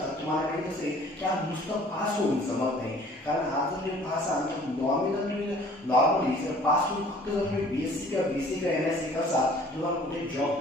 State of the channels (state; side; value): normal; both; correlation 0.52